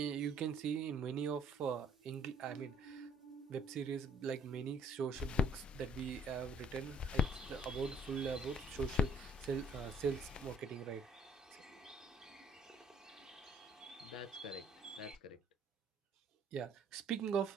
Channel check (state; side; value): normal; both; correlation 0.62